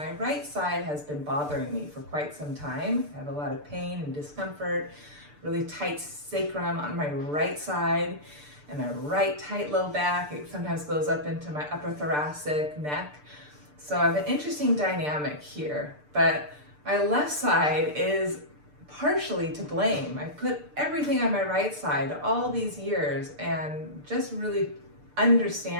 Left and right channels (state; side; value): late; left; 6.7 ms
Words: right side has been bothering me for quite some time. I have a lot of pain and discomfort, really tight sacrum on my right side, and a right tight low back. It sometimes goes up into my upper thoracic neck. So I have an interesting dynamic here, but my left side is partially to blame. I put everything on my right side all these years, and just really